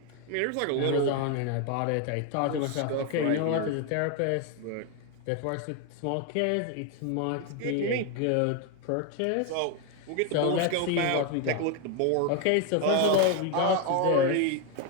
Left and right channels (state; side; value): different; both; correlation 0.01